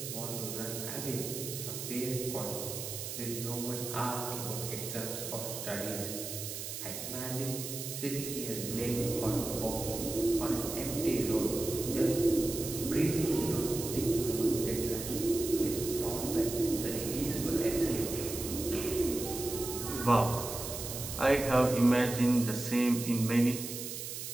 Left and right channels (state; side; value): noise; right; hiss, 7 dB below the sound